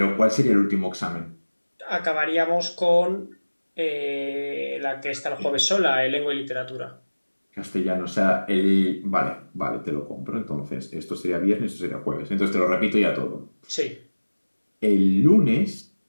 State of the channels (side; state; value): both; inverted; correlation -1.00